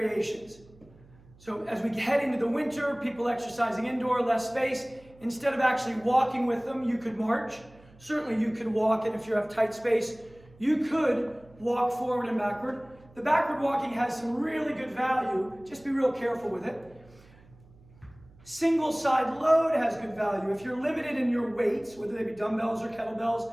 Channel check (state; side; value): noise; right; hum, 26 dB below the sound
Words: So as we head into the winter, people exercising indoor, less space, instead of actually walking with them, you could march. Certainly you could walk, and if you have tight space, you could walk forward and backward. The backward walking has some really good value. Just be real careful with it. Single side load has good value. If you're limited in your weights, whether they be dumbbells or